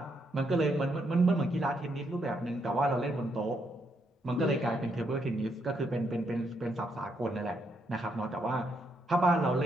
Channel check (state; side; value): normal; both; correlation 0.77